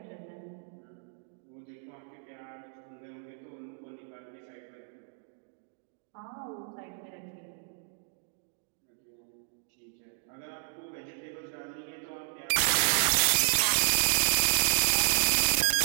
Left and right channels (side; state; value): left; silent; digital silence